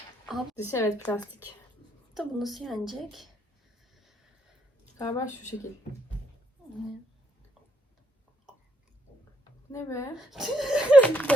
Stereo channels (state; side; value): normal; both; correlation 0.73